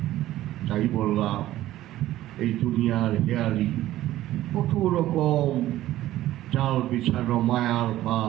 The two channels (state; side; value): quieter; left; 14.6 dB